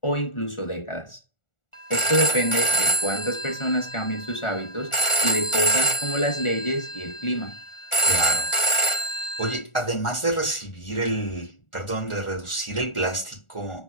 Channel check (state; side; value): late; right; 1.4 ms